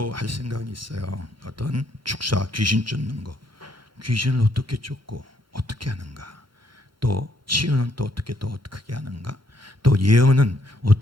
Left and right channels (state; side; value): normal; both; correlation 0.70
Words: 할 생각이 있어요. 어떤 축사, 귀신 쫓는 거, 귀신을 어떻게 쫓고 어떻게 하는가, 또 치유는 또 어떻게 하는가, 또 예언은